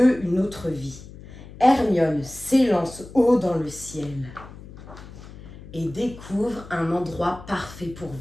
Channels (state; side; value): noise; left; hum, 16 dB below the sound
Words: une autre vie. Hermione s'élance haut dans le ciel et découvre un endroit parfait pour